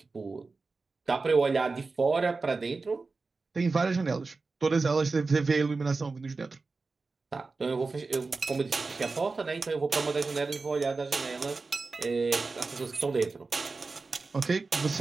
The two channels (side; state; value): left; quieter; 4.0 dB